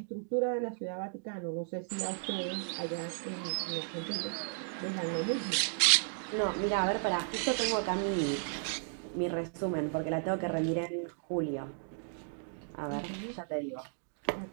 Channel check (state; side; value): silent; left; digital silence